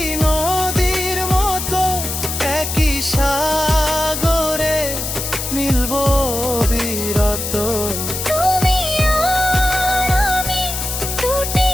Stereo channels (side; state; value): left; noise; hiss, 4 dB below the sound